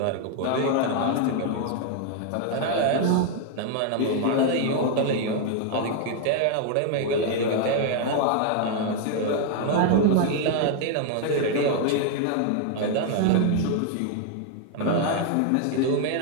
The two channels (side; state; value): both; different; correlation 0.00